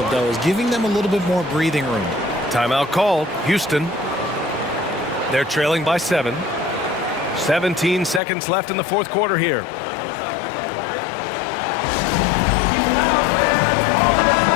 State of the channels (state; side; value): drops out; right; at 8.2 s